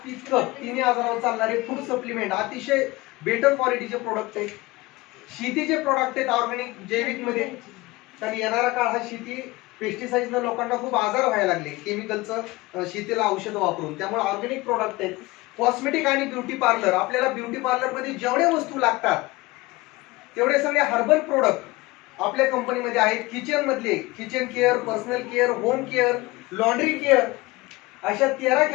पित्त तिन्ही आजारावर चालणारे फूड सप्लिमेंट अतिशय बेटर क्वालिटीचे प्रोडक्ट आहेत. शेतीचे प्रोडक्ट आहेत ऑर्गॅनिक जैविक मध्ये, कारण येणारा काळ हा शेती पेस्टिसाइडनं लोकांना खूप आजार व्हायला लागले केमिकलचं शेतीला औषध वापरून, त्यामुळे ऑर्गॅनिक प्रोडक्ट आहेत. कॉस्मेटिक आणि ब्युटी पार्लर, आपल्याला ब्युटी पार्लर मध्ये जेवढे वस्तू लागतात तेवढे सगळे हर्बल प्रोडक्ट आपल्या कंपनीमध्ये आहेत. किचन मधले kitchen care, personal care, home care, laundry care अशा 13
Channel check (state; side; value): quieter; right; 21.4 dB